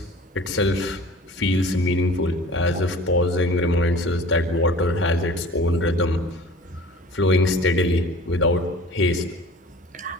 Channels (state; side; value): normal; both; correlation 0.43